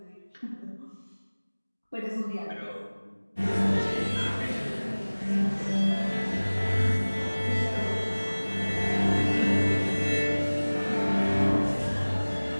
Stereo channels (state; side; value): inverted; both; correlation -1.00